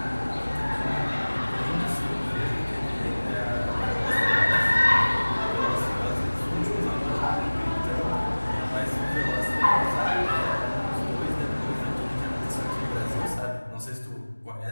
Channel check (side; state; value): both; inverted; correlation -1.00